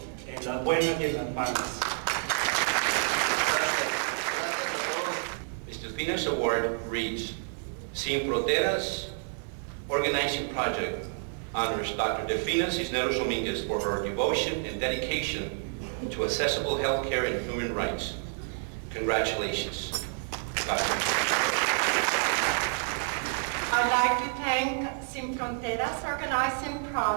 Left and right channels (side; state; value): left; silent; 58 dB below the other